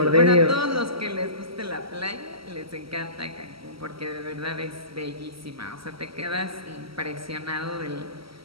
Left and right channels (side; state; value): left; late; 0.75 ms